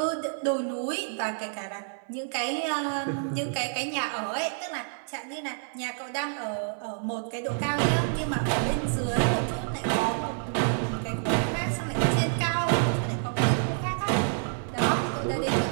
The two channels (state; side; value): silent; left; 59 dB below the other